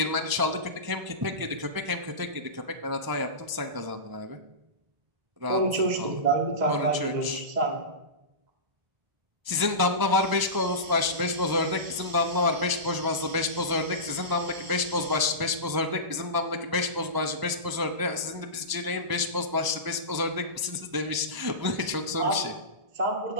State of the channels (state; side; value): late; left; 1.0 ms